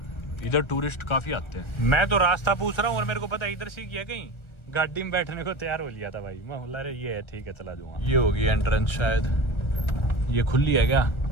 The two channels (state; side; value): late; right; 1.3 ms